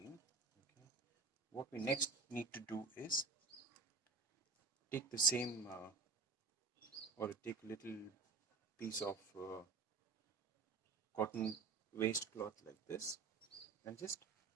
okay, what we next need to do is take the same or take a little piece of cotton waste cloth like this and just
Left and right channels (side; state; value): left; quieter; 4.5 dB